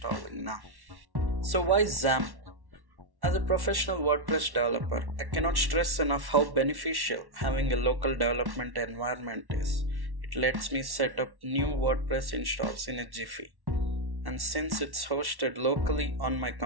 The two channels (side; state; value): left; late; 1.1 ms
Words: now. So why XAMPP? As a professional WordPress developer, I cannot stress enough how beneficial having a local development environment is. It lets me set up new WordPress installs in a jiffy. And since it's hosted locally on my